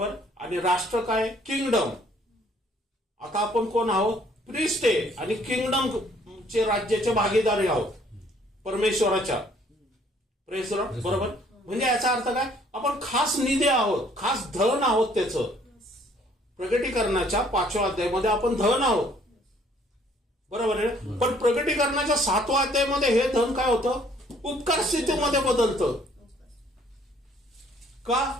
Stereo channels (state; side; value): normal; both; correlation 0.61